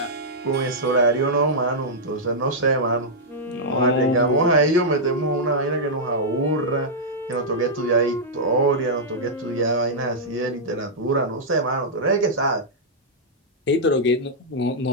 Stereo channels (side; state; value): both; normal; correlation -0.08